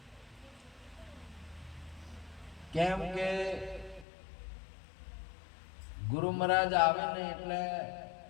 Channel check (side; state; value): right; drops out; at 4.0 s